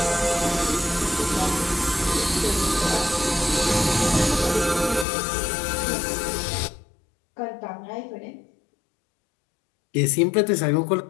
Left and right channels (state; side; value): drops out; right; at 5.1 s